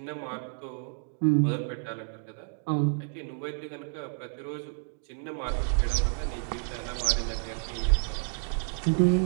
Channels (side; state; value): left; silent; digital silence